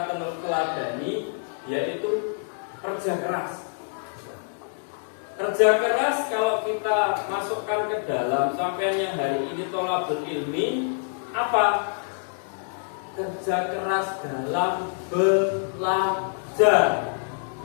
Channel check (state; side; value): silent; right; digital silence